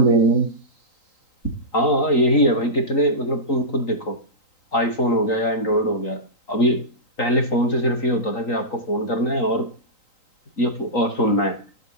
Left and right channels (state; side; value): late; right; 3.9 ms